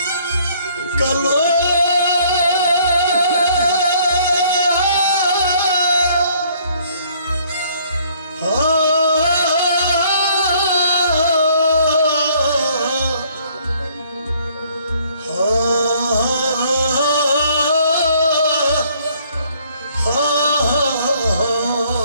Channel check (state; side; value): inverted; both; correlation -0.61